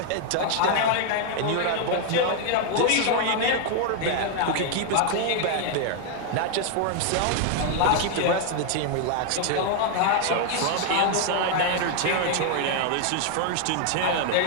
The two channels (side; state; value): both; different; correlation 0.00